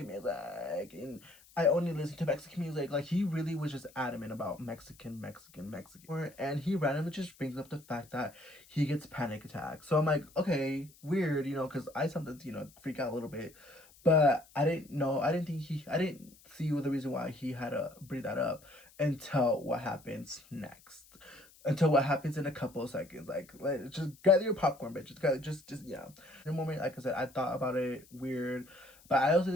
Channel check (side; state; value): left; noise; hiss, 25 dB below the sound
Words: music and I only listen to Mexican music. Like, he really was just adamant about Mexican. And he randomly just brings up the fact that he gets panic attacks. So I'm like, okay, weird, you know, because I sometimes, you know, freak out a little bit. But I didn't see the reason why he had to bring that up until what happens next. Until what happens in a couple of seconds. Like, just gather your popcorn, bitch. Just yeah. In a moment, like I said, I thought about it weird, but I also